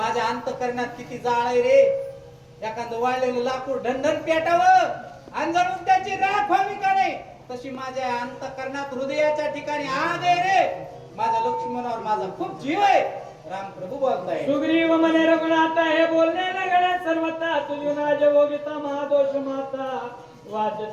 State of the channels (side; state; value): both; identical; correlation 1.00